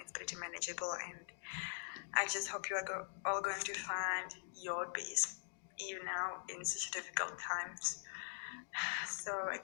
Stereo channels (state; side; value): silent; right; digital silence